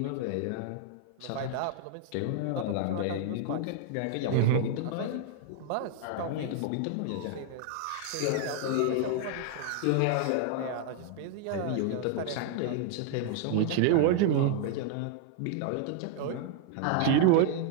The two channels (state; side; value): different; both; correlation 0.00